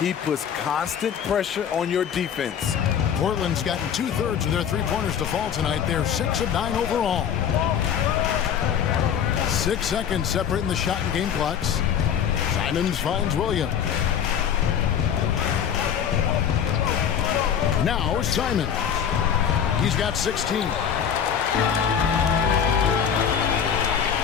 He puts constant pressure on your defense. Portland's gotten 2/3 of their three-pointers to fall tonight. They're 6 of 9 overall. 6 seconds separating the shot and game clocks. Simons finds Williams. Now Simons. He's got 16.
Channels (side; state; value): right; quieter; 8.3 dB